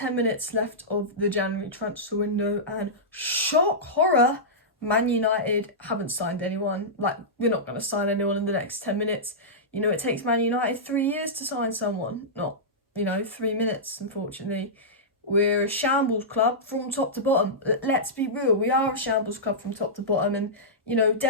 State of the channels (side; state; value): both; normal; correlation -0.14